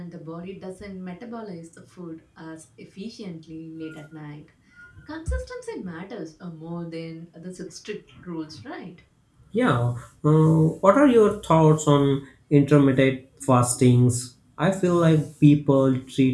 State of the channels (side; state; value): both; identical; correlation 1.00